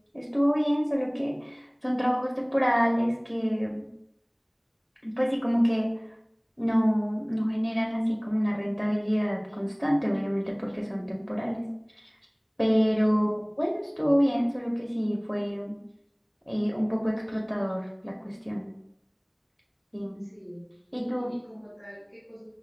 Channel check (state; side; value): identical; both; correlation 1.00